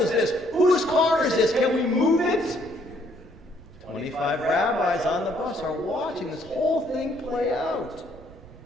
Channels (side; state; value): right; noise; rumble, 21 dB below the sound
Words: this? Whose car is this? Can we move it? 25 rabbis on the bus are watching this whole thing play out.